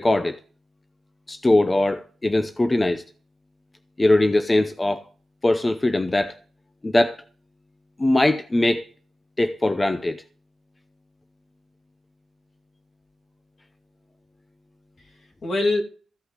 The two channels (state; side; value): normal; both; correlation 0.98